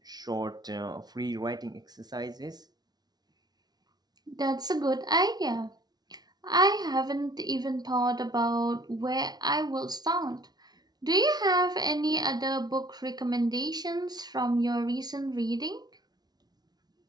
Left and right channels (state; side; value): late; left; 0.19 ms